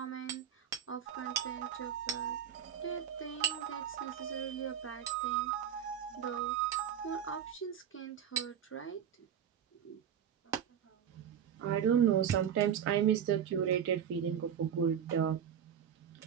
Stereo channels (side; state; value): left; quieter; 8.9 dB